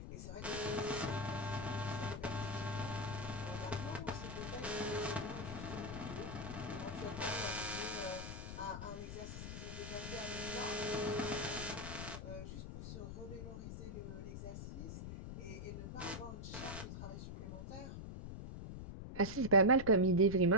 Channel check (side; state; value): left; noise; rumble, 8 dB below the sound